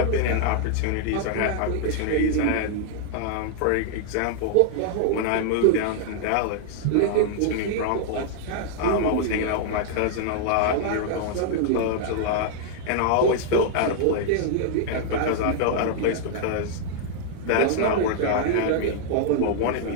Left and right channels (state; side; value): different; both; correlation -0.01